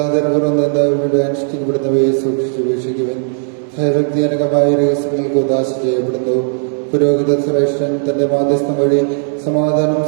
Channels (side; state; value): left; silent; digital silence